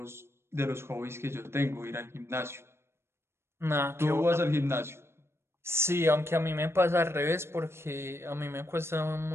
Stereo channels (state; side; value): late; left; 0.12 ms